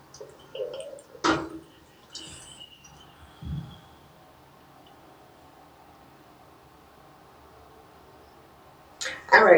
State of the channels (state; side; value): identical; both; correlation 1.00